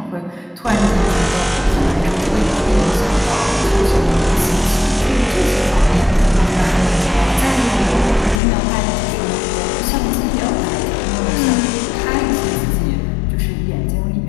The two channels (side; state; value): right; drops out; at 8.4 s